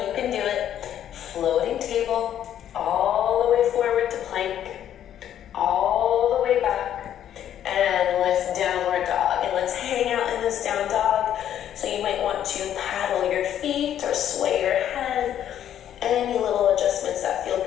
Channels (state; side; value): quieter; right; 10.5 dB